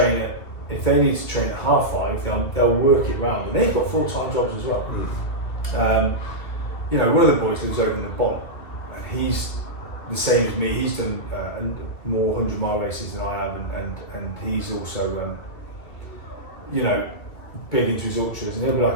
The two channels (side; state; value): right; late; 2.1 ms